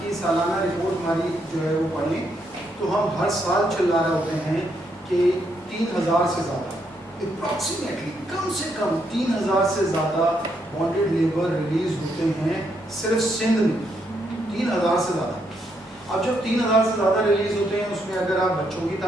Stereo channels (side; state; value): both; normal; correlation 0.77